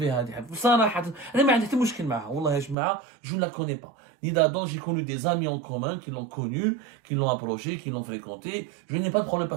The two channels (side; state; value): left; drops out; at 2.8 s